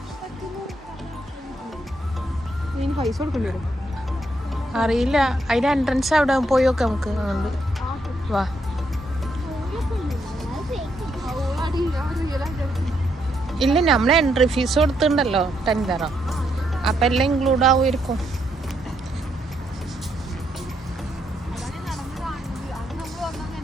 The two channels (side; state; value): both; normal; correlation 0.77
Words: പൈസ കൊടുക്കേണ്ടി വരും. അറിയില്ല. അതിന്റെ എൻട്രൻസ് അവിടെ പോയി നോക്കാം നമുക്ക്. അതുകൊണ്ട് വാ. ഇല്ല, നമ്മളെ എൻട്രി ഫീസ് കൊടുത്തിട്ടുണ്ടല്ലോ, $10. അപ്പം എല്ലാം ഇൻക്ലൂഡ് ആവുമായിരിക്കും.